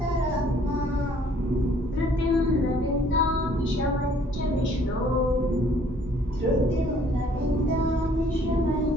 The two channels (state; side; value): normal; both; correlation 0.59